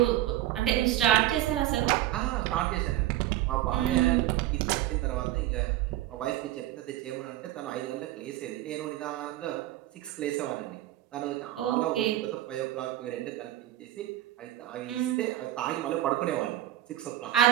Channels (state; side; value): quieter; left; 14.3 dB